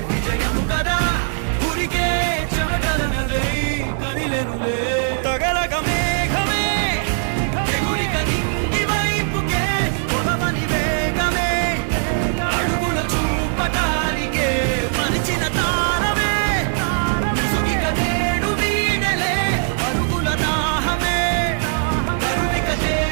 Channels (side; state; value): left; silent; digital silence